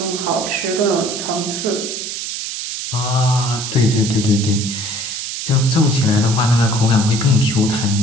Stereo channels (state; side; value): noise; right; hiss, 5 dB below the sound